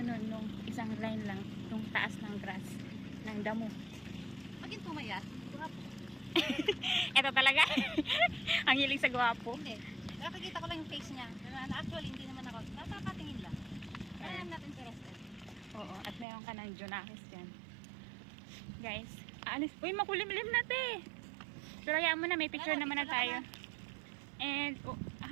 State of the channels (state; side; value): drops out; left; at 16.2 s